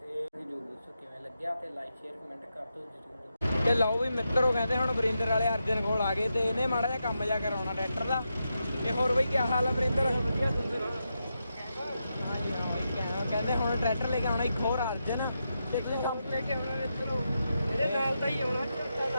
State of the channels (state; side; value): inverted; both; correlation -0.86